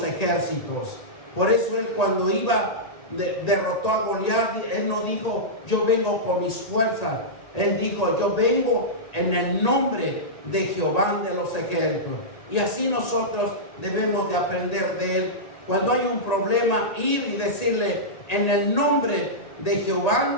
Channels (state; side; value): late; right; 1.8 ms